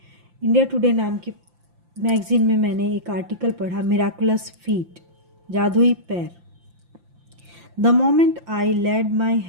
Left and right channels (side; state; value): left; late; 5.8 ms